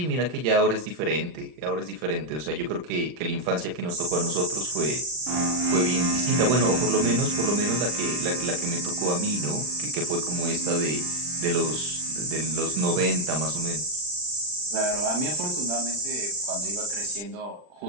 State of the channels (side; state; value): left; late; 39 ms